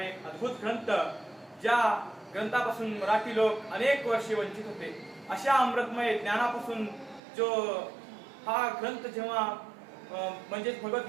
एक अद्भुत ग्रंथ, ज्या ग्रंथापासून मराठी लोक अनेक वर्षे वंचित होते। अशा अमृतमय ज्ञानापासून जो हा ग्रंथ जेव्हा म्हणजे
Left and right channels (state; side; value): drops out; left; at 7.2 s